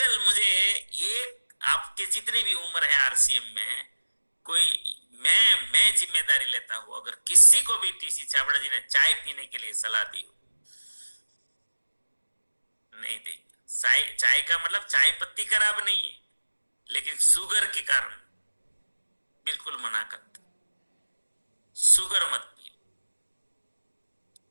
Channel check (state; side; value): inverted; both; correlation -1.00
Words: मुझे एक, आपके जितनी भी उम्र है आरसीएम में, कोई मैं जिम्मेदारी लेता हूं, अगर किसी को भी टीसी छाबड़ा जी ने चाय पीने के लिए सलाह दी हो, नहीं देंगे। चाय का मतलब चाय पत्ती खराब नहीं है, लेकिन शुगर के कारण बिल्कुल मना करते, शुगर मत पियो।